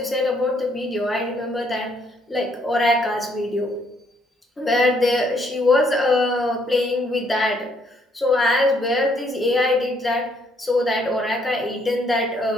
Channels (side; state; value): both; normal; correlation 0.69